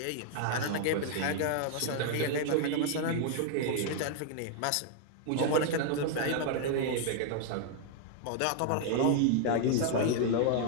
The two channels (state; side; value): different; both; correlation 0.00